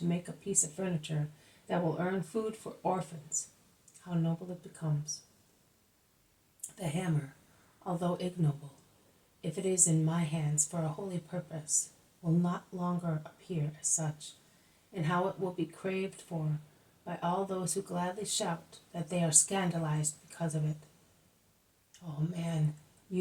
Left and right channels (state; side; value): identical; both; correlation 1.00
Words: make a piece of furniture that will earn food for orphans, how noble it becomes. The hammer, although ignoble, if it is in my hands for a holy purpose, will not longer appear as such, and how it will be craved for by all those who gladly shout that they are scandalized because of it. Oh man,